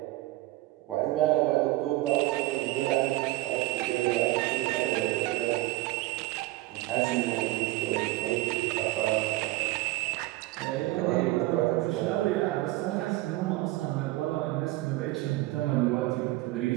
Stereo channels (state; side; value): quieter; left; 18.6 dB